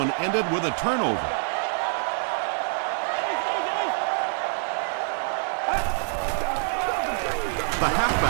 ended with a turnover. The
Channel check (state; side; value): silent; left; digital silence